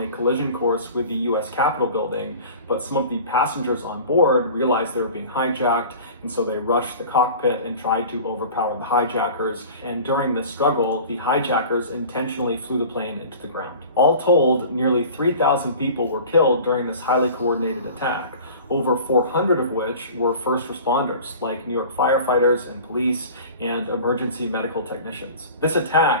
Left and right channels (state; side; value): inverted; both; correlation -0.41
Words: collision course with the U.S. Capitol building, but some of the passengers on board realized they were being hijacked, and so they rushed the cockpit and tried to overpower the hijackers. And during this struggle, the hijackers intentionally flew the plane into the ground. All told, nearly 3,000 people were killed during this highly coordinated attack, over 400 of which were first responders, like New York firefighters and police and emergency medical technicians. This